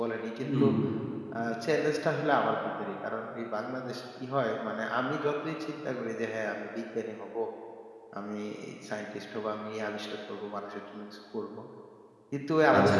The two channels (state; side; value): identical; both; correlation 1.00